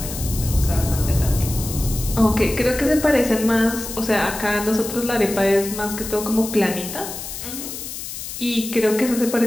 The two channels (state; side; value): noise; left; hiss, 9 dB below the sound